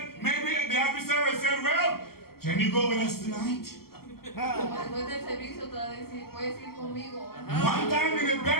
maybe the officer said, well, can you go with us tonight? Como después del servicio te va a decir, puedes ir conmigo. One time in the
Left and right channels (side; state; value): right; late; 0.94 ms